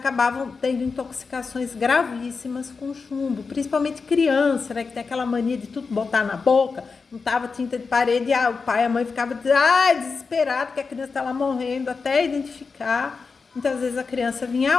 tendo intoxicações gravíssimas com chumbo, principalmente criança, né, que tem aquela mania de tudo botar na boca, não tava tinta de parede, o pai e a mãe ficavam desesperado que a criança estava morrendo, até identificar, muitas vezes a criança vinha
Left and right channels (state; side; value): quieter; right; 4.8 dB